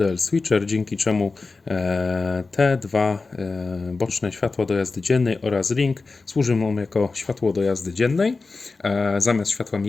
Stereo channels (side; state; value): right; quieter; 4.0 dB